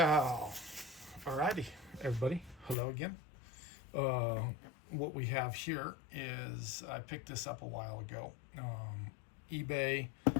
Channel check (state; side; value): drops out; right; at 2.8 s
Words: alrighty, everybody. Hello again. Uh, what we have here is I picked this up a while ago. eBay.